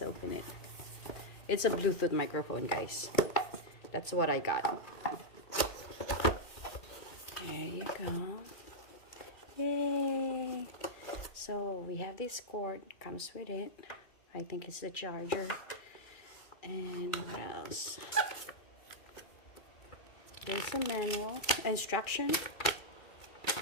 open it. It's a Bluetooth microphone, guys. That's what I got. There you go. Yay. So we have this cord, comes with it. I think it's the charger. And what else? There's a manual, instruction.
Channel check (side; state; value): right; late; 2.2 ms